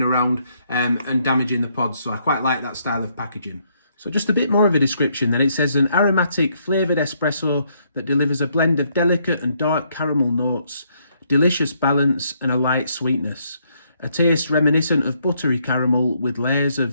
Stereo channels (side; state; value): both; inverted; correlation -0.72